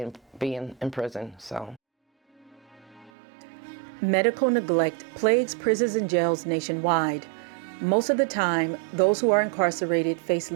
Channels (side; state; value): left; drops out; at 3.1 s